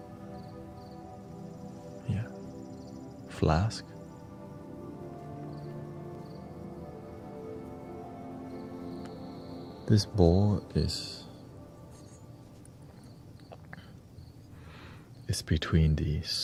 Yeah. Flask. This bowl is between the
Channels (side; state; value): both; identical; correlation 1.00